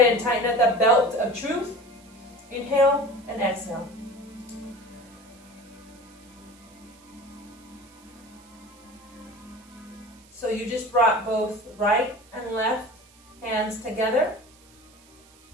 and tighten up the belt of truth. Inhale and exhale. So you just brought both right and left hands together.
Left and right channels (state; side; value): noise; right; hiss, 27 dB below the sound